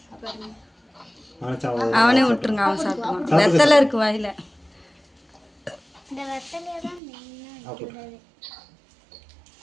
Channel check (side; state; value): left; drops out; at 7.0 s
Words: அவனே விட்டுருங்க, அவன் சாப்பிடுவான். வெத்தலை இருக்கு வாயில. இந்த வெத்தலையை தான் மெயினாக வைக்கிறது.